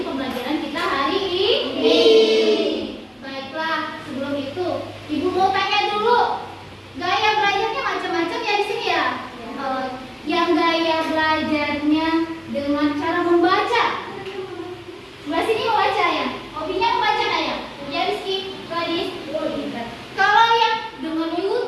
pembelajaran kita hari ini. Baiklah, sebelum itu Ibu mau tanya dulu, gaya belajarnya macam-macam ya di sini ya. Yang gaya belajarnya dengan cara membaca. Sebelah sini membaca ya. Hobinya membaca nggak ya? Ya Rizky, Gadis. Kalau yang dengan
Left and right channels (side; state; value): both; identical; correlation 1.00